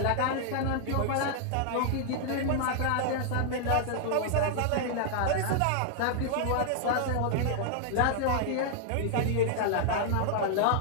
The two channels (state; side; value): different; both; correlation -0.01